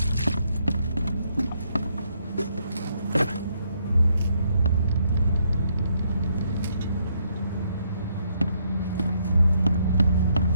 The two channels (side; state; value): both; inverted; correlation -0.73